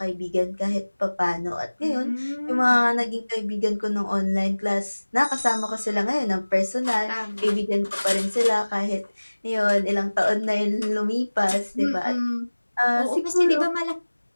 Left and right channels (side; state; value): both; inverted; correlation -1.00